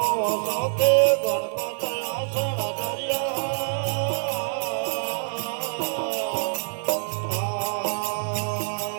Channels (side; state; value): left; silent; 61 dB below the other